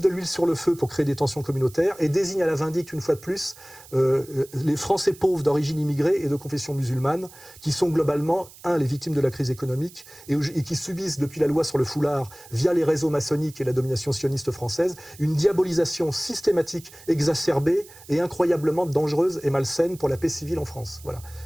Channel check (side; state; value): right; noise; hiss, 21 dB below the sound